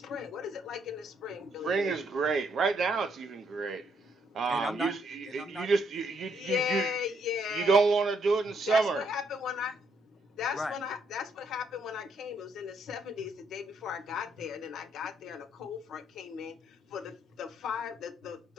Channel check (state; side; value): normal; both; correlation 0.72